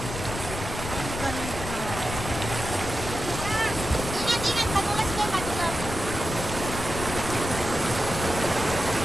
Ay, ingat, madulas kayo, madulas.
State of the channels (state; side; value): noise; left; rumble, 7 dB below the sound